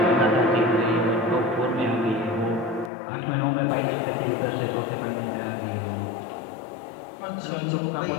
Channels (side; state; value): right; drops out; at 2.9 s